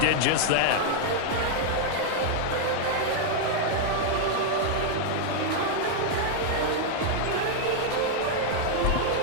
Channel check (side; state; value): both; different; correlation 0.00